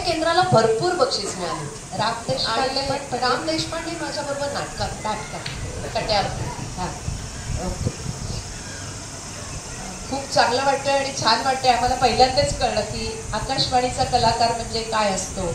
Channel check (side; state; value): both; identical; correlation 1.00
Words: भरपूर बक्षीस मिळाली. राम देशपांडे माझ्या बरोबर नाटकात कट्यार. खूप चांगलं वाटतंय आणि छान वाटतंय. आम्हाला पहिल्यांदाच कळलं की आकाशवाणीचा कलाकार म्हणजे काय असतो